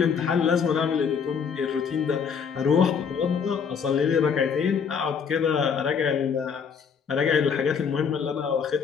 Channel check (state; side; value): quieter; right; 6.5 dB